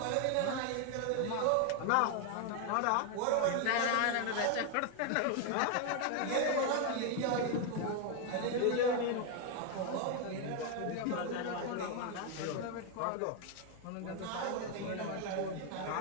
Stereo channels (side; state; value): both; different; correlation 0.01